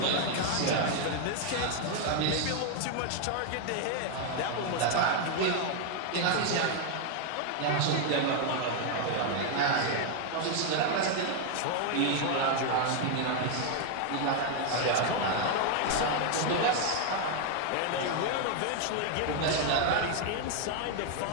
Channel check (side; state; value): both; different; correlation 0.00